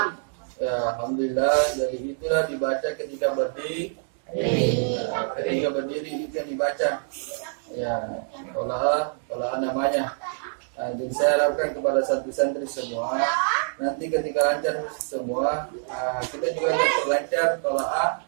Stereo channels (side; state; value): left; silent; digital silence